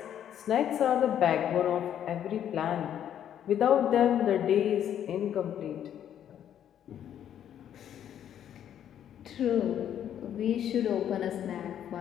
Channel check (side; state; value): right; quieter; 10.0 dB